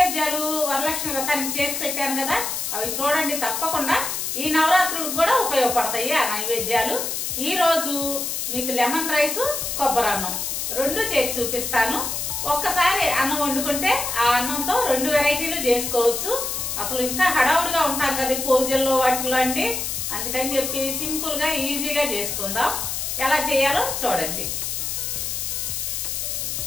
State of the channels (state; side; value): noise; left; hiss, 2 dB below the sound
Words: వరలక్ష్మి వ్రతానికి చేసి పెట్టాను కదా, అవి చూడండి తప్పకుండా. ఈ నవరాత్రులకు కూడా ఉపయోగపడతాయి ఆ నైవేద్యాలు. ఈ రోజు మీకు లెమన్ రైస్, కొబ్బరి అన్నం రెండు చేసి చూపిస్తాను. ఒక్కసారి అన్నం వండుకుంటే ఆ అన్నంతో రెండు వెరైటీలు చేసుకోవచ్చు. అసలు ఇంకా హడావుడిగా ఉంటాం కదా పూజల్లో వాటిల్లో అండి, అందుకని చెప్పి సింపుల్ గా ఈజీగా చేసుకుందాం. ఎలా చేయాలో చూడండి.